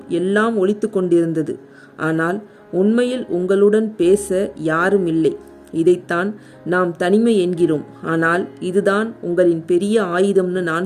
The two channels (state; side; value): identical; both; correlation 1.00